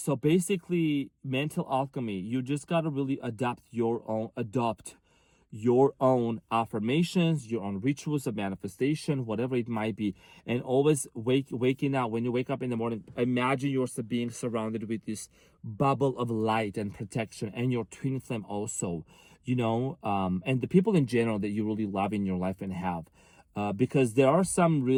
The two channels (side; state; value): both; identical; correlation 1.00